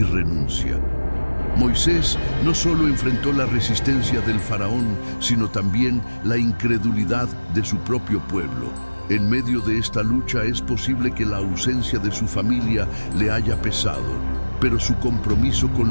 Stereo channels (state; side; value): inverted; both; correlation -1.00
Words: renuncia. Moisés no solo enfrentó la resistencia del faraón, sino también la incredulidad de su propio pueblo. En medio de esta lucha es posible que la ausencia de su familia le haya pesado, pero su compromiso